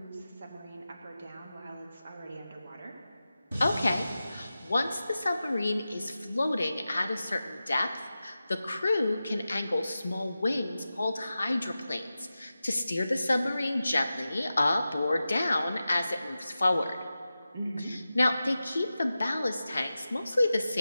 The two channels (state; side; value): inverted; both; correlation -0.94